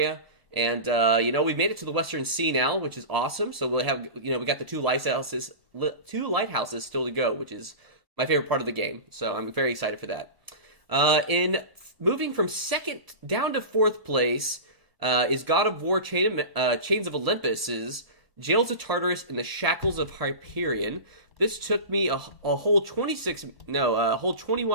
And, we made it to the Western Sea now, which is awesome. So we'll have, we got the 2 lighthouses still to go, which is my favorite part of the game. So I'm very excited for that. In moving from 2nd down to 4th place is God of War Chains of Olympus's Jails of Tartarus and the Shackles of Hyperion. This took me a whole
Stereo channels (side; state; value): left; late; 1.1 ms